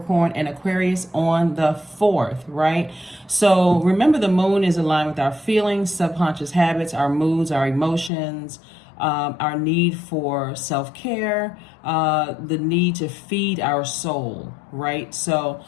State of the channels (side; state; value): right; drops out; at 8.1 s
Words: and Aquarius on the 4th, right? So remember, the moon is aligned with our feelings, subconscious habits, our moods, our emotions, our need for self-care, the need to feed our soul, right? So